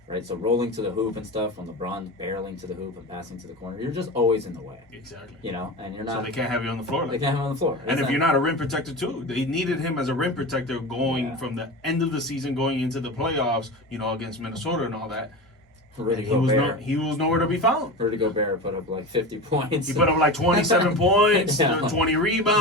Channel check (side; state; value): both; normal; correlation 0.27